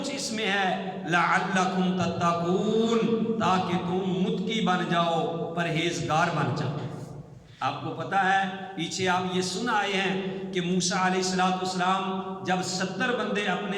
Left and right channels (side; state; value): both; identical; correlation 1.00